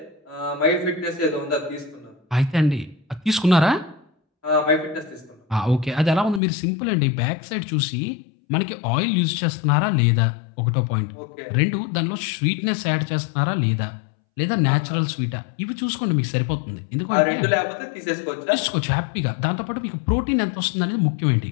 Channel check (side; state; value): right; drops out; at 6.4 s